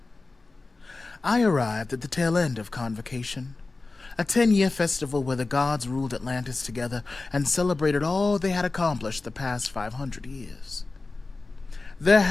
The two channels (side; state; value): right; quieter; 3.5 dB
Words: I arrived at the tail end of Convocation, a 10-year festival where the gods ruled Atlantis together and celebrated all they had accomplished the past 500 years. There